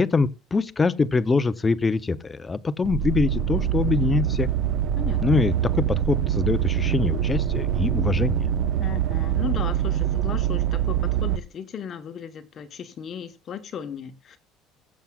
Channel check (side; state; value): both; normal; correlation 0.38